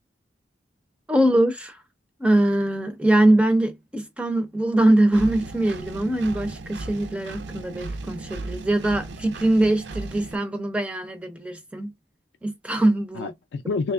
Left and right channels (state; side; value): normal; both; correlation 0.94